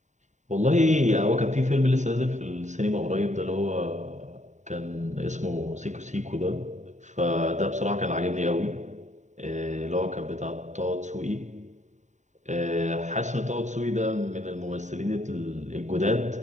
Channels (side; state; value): left; late; 0.34 ms